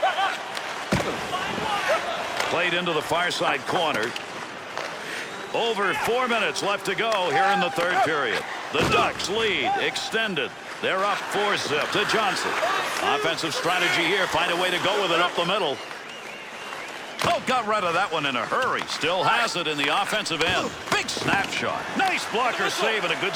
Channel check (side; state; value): both; identical; correlation 1.00